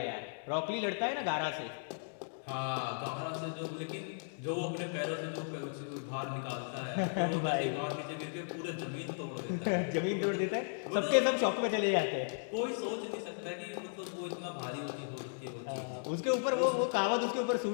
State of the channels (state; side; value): silent; right; digital silence